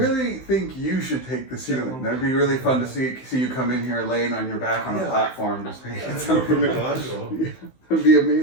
think you should take the ceiling. That'd be really fun to see you come in here laying on your back on a Yeah. platform just painting That's work for something. Michelangelo. Yeah, that'd be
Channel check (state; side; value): late; right; 16 ms